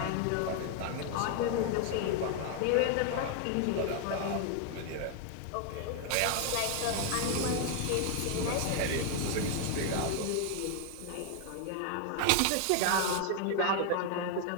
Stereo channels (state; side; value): different; both; correlation 0.00